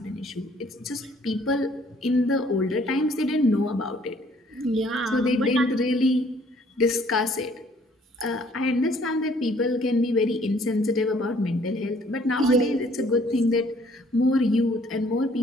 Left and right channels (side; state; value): both; normal; correlation 0.60